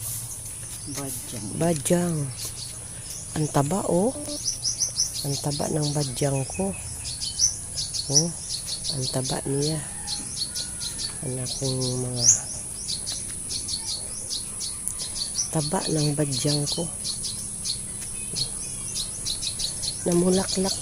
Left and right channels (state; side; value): identical; both; correlation 1.00